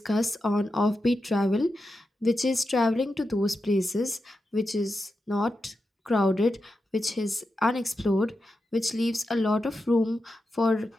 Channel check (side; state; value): both; normal; correlation 0.89